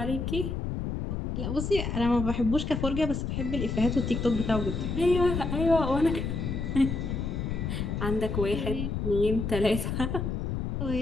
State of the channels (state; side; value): noise; left; rumble, 2 dB below the sound